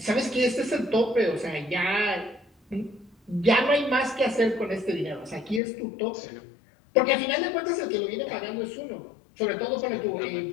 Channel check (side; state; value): right; drops out; at 5.6 s